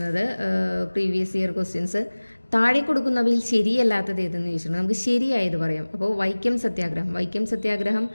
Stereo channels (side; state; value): both; inverted; correlation -1.00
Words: പ്രീവിയസ് ഇയർ ക്വസ്റ്റ്യൻസ്. താഴെ കൊടുക്കുന്നവയിൽ ശരിയല്ലാത്തത് ഏതെന്ന് ചോദിച്ചിട്ടുണ്ട്. നമുക്ക് ശരിയായത് പറയാം. അപ്പോൾ വൈക്കം സത്യാഗ്രഹം